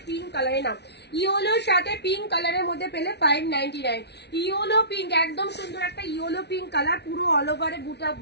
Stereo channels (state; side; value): late; right; 0.49 ms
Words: পিঙ্ক কালারে নাও, ইয়েলোর সাথে পিঙ্ক কালারের মধ্যে পেলে 599। ইয়েলো পিঙ্ক, একদম সুন্দর একটা ইয়েলো পিঙ্ক কালার, পুরো অল ওভারে বুটা